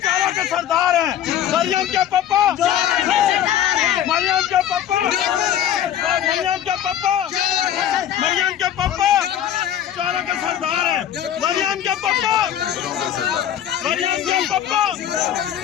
के सरदार हैं। मरियम के पापा, मरियम के पापा, मरियम के पापा, मरियम के पापा चारों के सरदार हैं। मरियम के पापा, मरियम के पापा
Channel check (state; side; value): quieter; right; 10.6 dB